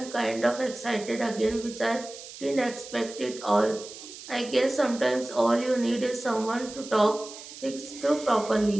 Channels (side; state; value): right; noise; hiss, 14 dB below the sound